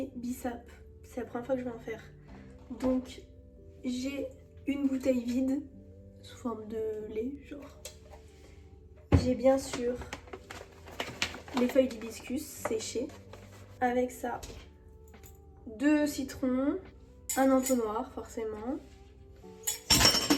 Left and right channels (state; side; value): identical; both; correlation 1.00